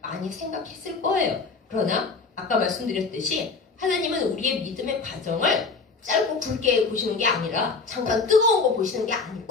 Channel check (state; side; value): quieter; right; 4.4 dB